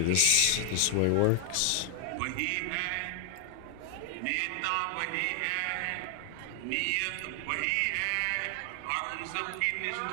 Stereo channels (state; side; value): different; both; correlation 0.00